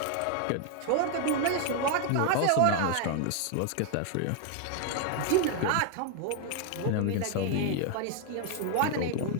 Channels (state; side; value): different; both; correlation 0.00